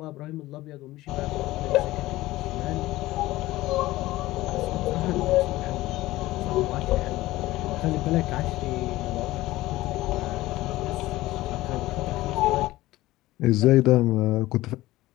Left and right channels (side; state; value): right; quieter; 17.4 dB